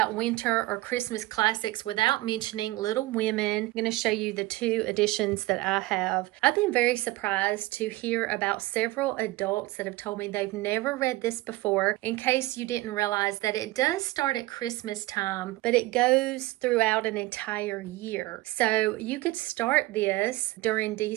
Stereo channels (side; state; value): left; quieter; 19.3 dB